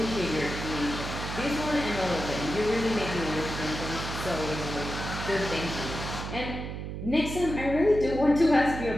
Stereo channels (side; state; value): right; noise; hum, 6 dB below the sound